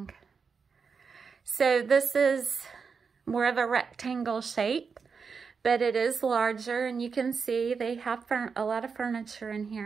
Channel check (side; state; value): left; quieter; 5.5 dB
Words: So this is more of a rectangle shape, but it is larger, and you can see they have a lot of furniture in